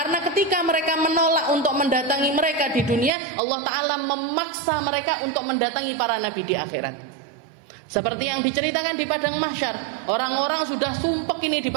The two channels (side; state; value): left; drops out; at 3.1 s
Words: ketika mereka menolak untuk mendatangi mereka di dunia, Allah Ta'ala memaksa mereka untuk mendatangi para nabi di akhirat. Seperti yang diceritakan di padang mahsyar, orang-orang sudah sumpek ini di